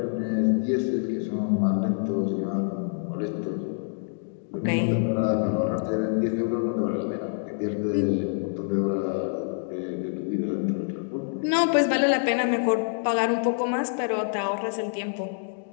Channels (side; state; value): right; silent; digital silence